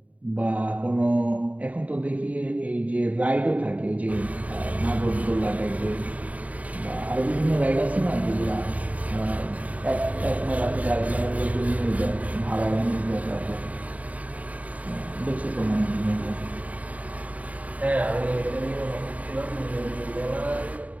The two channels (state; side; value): late; left; 0.070 ms